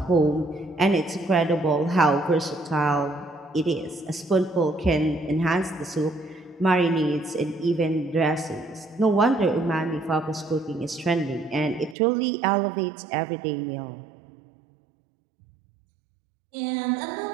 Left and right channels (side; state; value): left; drops out; at 12.0 s